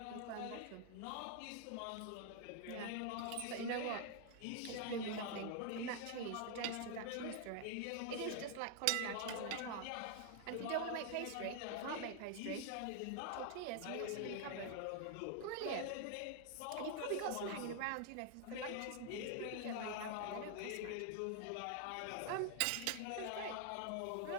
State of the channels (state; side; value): different; both; correlation 0.00